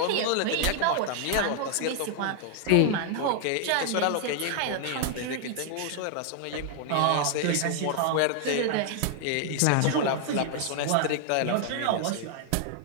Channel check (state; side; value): different; both; correlation 0.00